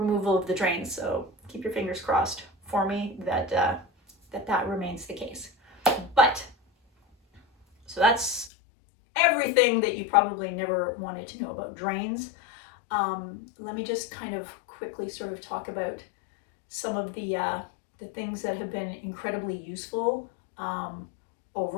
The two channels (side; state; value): right; drops out; at 8.5 s